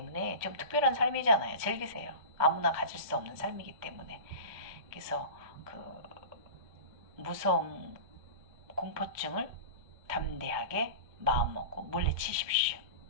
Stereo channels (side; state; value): left; late; 2.2 ms